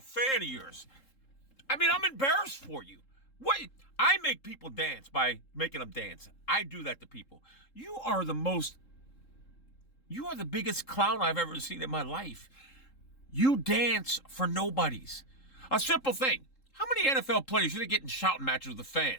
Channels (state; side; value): late; right; 3.7 ms